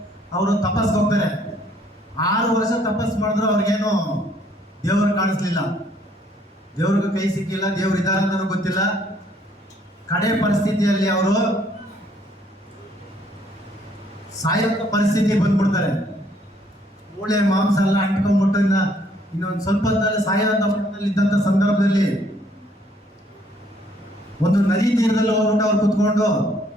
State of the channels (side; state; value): both; normal; correlation 0.65